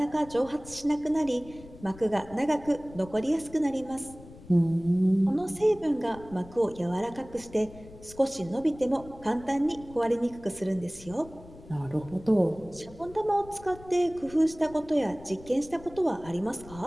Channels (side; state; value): left; noise; rumble, 19 dB below the sound